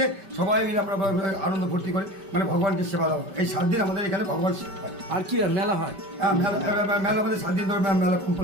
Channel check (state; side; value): late; left; 5.2 ms